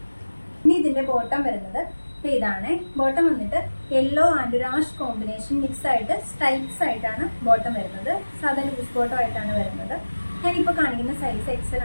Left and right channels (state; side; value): inverted; both; correlation -1.00